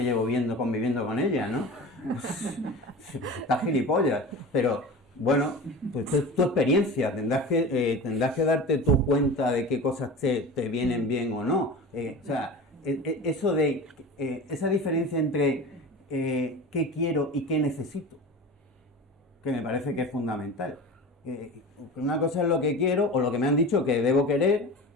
llevo conviviendo con ella, ¿no? Pues, está gilipollas, pero bueno, pues es tu experiencia, tendrás que darte tu cuenta de qué cosas te vienen bien o no. O sea, eso de esa diferencia entre qué quiero y qué necesito, que me parece que es fundamental. Una cosa es lo que quiero o lo que me han dicho que debo querer,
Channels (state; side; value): normal; both; correlation 0.33